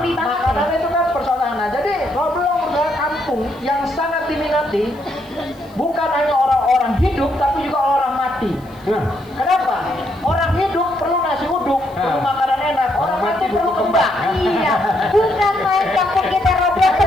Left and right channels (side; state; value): left; noise; hiss, 29 dB below the sound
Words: banget. makanan itu kan persoalan. Nah, jadi Rawablong adalah kampung yang sangat diminati, bukan hanya orang-orang hidup, tapi juga orang mati. Kenapa? Orang hidup perlu nasi uduk, perlu makanan enak. Orang mati perlu kembang. Iya, bukan main kampung kita Roblong.